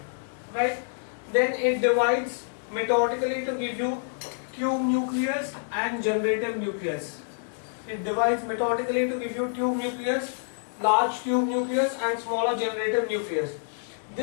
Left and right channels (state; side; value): silent; right; digital silence